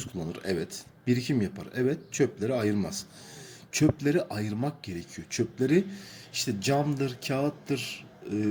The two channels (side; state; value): both; identical; correlation 1.00